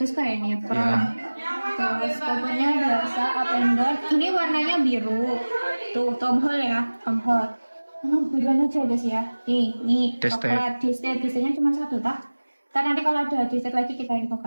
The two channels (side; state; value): both; inverted; correlation -1.00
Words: sekali ini ya crown. Terus covernya biasa up and down. Ini warnanya biru. Tuh Tom Hall ya, Tom Hall. Buruan aja guys ya. Nih coklat. Desainnya cuma satu tak? Ntar nanti kalau ada desain lagi kita